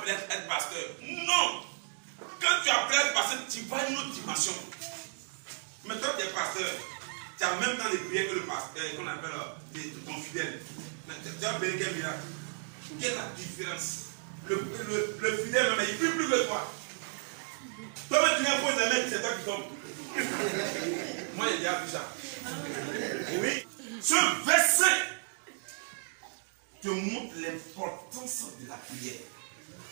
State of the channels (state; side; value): silent; left; 56 dB below the other